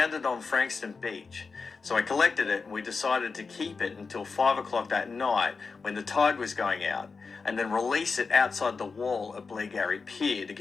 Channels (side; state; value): right; quieter; 4.7 dB